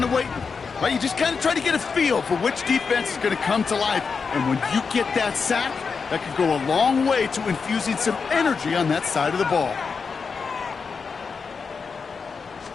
of waiting. Right? You just kind of try to get a feel for which defense is going to come to life. And when you get that sack, that could go a long way to infusing some energy on that side of the ball.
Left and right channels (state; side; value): quieter; right; 5.3 dB